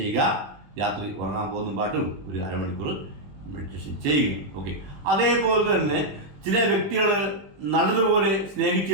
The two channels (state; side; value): late; left; 21 ms